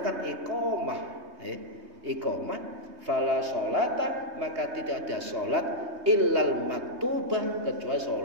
iqamah fala sholata maka tidak ada salat illal maktubah kecuali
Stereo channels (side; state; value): left; late; 3.2 ms